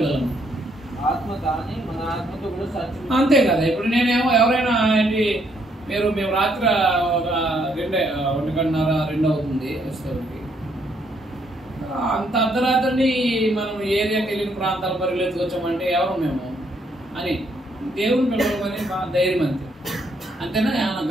ఆత్మ కానీ మన ఆత్మతో కూడా సాధ్యం. అంతే కదా. ఇప్పుడు నేనేమో ఎవరైనా ఏంటి మేము రాత్రి 1:30-2 అవుతుంది వస్తుంది, అంత అర్ధరాత్రిని మనం ఏరియాకి వెళ్ళిన ప్రాంతాల పరిగెత్తుకొచ్చామంటే ఎవరు మేము అని దేవుని పిల్లలమని మా ధైర్యం అంతే. అంతేనా? ఏమైనా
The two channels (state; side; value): normal; both; correlation 0.71